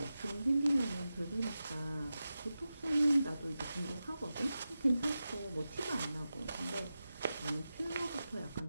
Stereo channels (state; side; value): inverted; both; correlation -0.93